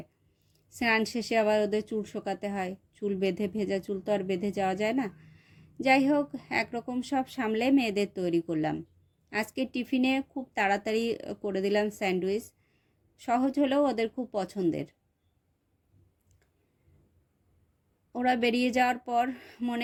স্নান শেষে আবার ওদের চুল শোকাতে হয়, চুল বেঁধে, ভেজা চুল তো আর বেঁধে যাওয়া যায় না। যাই হোক, একরকম সব সামলে মেয়েদের তৈরি করলাম। আজকে টিফিনে খুব তাড়াতাড়ি করে দিলাম স্যান্ডউইচ, সহজ হলেও ওদের খুব পছন্দের। ওরা বেরিয়ে যাওয়ার পর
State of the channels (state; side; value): identical; both; correlation 1.00